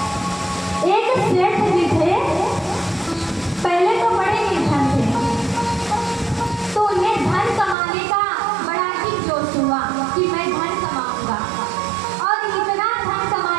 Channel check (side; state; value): left; drops out; at 7.8 s